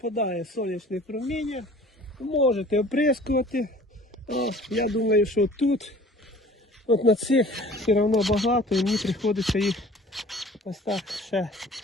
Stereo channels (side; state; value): both; normal; correlation 0.48